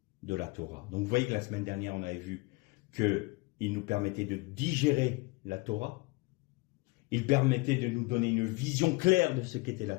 de la Torah. Donc vous voyez que la semaine dernière, on avait vu qu'il nous permettait de digérer la Torah. Il permettait de nous donner une vision claire de ce qu'était la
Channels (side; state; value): right; quieter; 24.9 dB